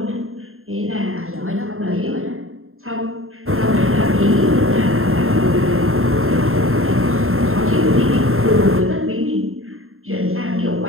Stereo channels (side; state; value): left; late; 0.61 ms